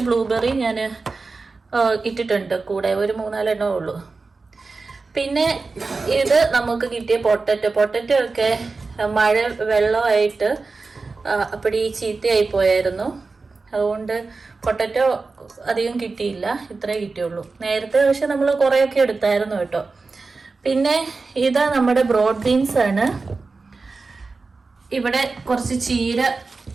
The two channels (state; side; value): quieter; left; 4.0 dB